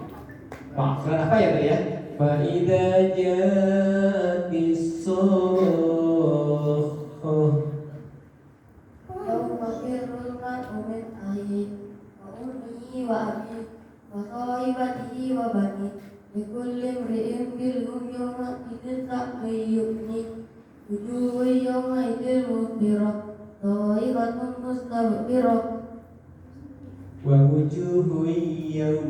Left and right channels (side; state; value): both; identical; correlation 1.00